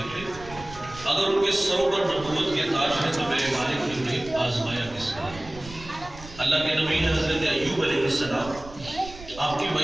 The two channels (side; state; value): right; noise; rumble, 16 dB below the sound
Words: لیں، اگر ان کے سروں پر نبوت کے تاج ہے تو میرے مالک نے انہیں آزمایا کس کا؟ اللہ کے نبی ہے حضرت ایوب علیہ السلام. آپ کی